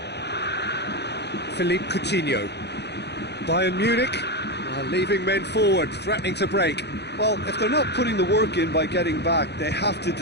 Philippe Coutinho. Bayern Munich are leaving men forward, threatening to break. Well, if they're not putting the work in by getting back, they have to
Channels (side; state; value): right; late; 0.49 ms